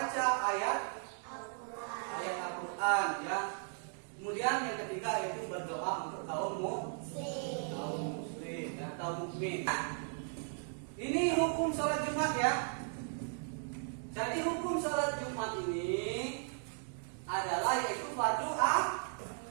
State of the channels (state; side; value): silent; left; 53 dB below the other